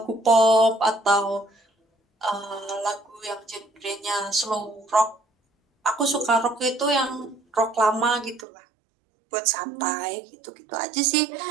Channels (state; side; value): drops out; left; at 8.5 s